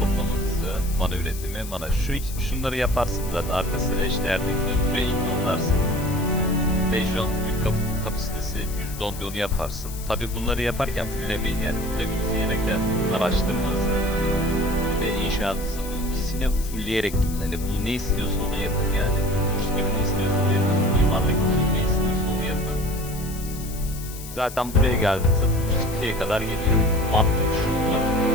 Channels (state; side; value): noise; left; hiss, 13 dB below the sound